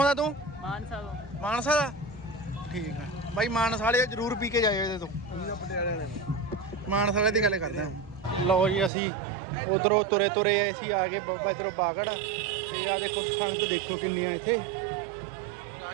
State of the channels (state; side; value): drops out; left; at 8.9 s